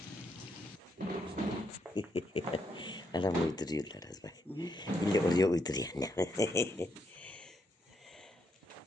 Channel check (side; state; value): both; normal; correlation 0.78